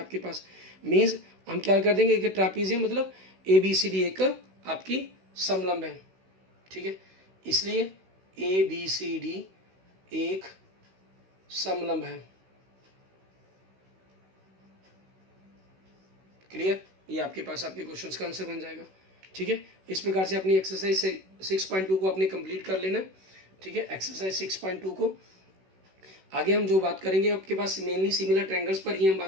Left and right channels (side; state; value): left; late; 16 ms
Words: पास, मीन्स हम क्या कर देंगे कि ट्रैपीजियम मतलब ABCD एक आपकी समलंब है, ठीक है। इसलिए ABCD एक समलंब है, क्लियर। ये आपके पास आपके क्वेश्चंस का आंसर बन जाएगा, ठीक है। इस प्रकार से अपनी एक्सरसाइज 6.2 को आपने कंप्लीट कर लेना, ठीक है। एक्सरसाइज 6.2 को आगे हम जो बात करेंगे आपके पास मेनली सिमिलर ट्रायंगल्स पर ही हम